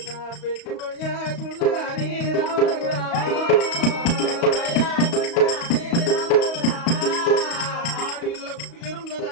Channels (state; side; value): late; right; 35 ms